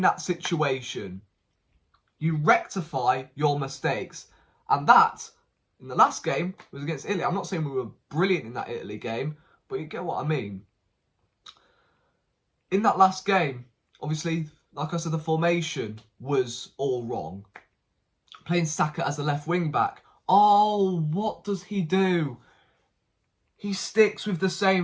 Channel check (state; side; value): identical; both; correlation 1.00